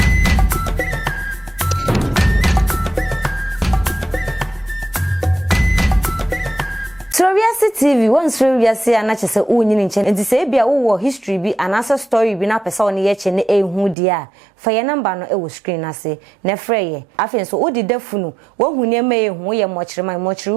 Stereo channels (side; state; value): left; drops out; at 14.0 s